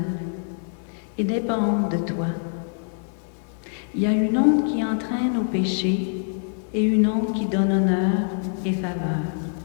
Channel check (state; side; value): silent; right; 57 dB below the other